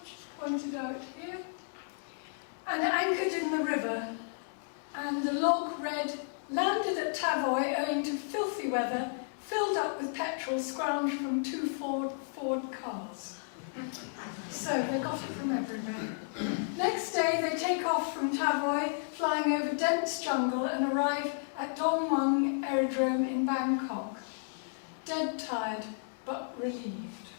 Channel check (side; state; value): right; silent; 56 dB below the other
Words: pointed out here, and anchored in the river. And the log read, "Landed at Tavoy owing to filthy weather, filled up with petrol scrounged from 2 Ford cars." So they got it from everywhere. Next day they take off from Tavoy, flying over dense jungle, and arrive at Dong Mueang Aerodrome in Bangkok. Dead tired, but relieved.